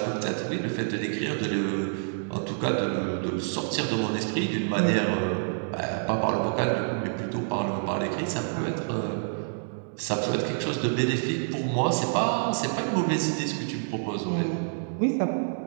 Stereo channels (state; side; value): silent; left; digital silence